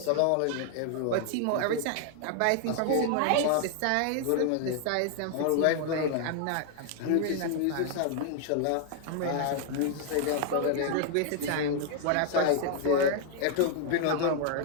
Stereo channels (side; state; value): both; different; correlation 0.00